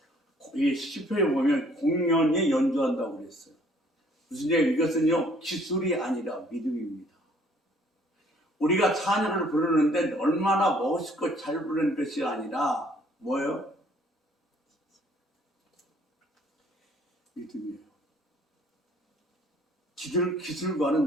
이 시편에 보면 공연히 연주한다고 그랬어요. 무슨 얘기예요? 이것은요 기술이 아니라 믿음입니다. 우리가 찬양을 부르는데 얼마나 멋있고 잘 부르는 것이 아니라 뭐예요? 믿음이에요.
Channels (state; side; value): normal; both; correlation 0.60